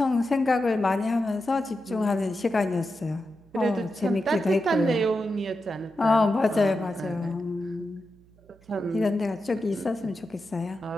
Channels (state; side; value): noise; right; hum, 28 dB below the sound